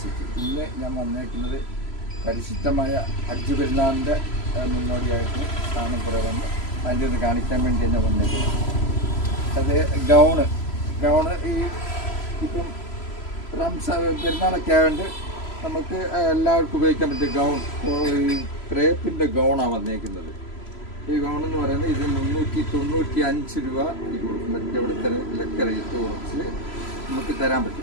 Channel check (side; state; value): right; late; 3.0 ms